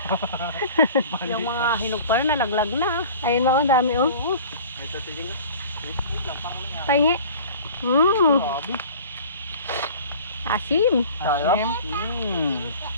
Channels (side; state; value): both; inverted; correlation -0.43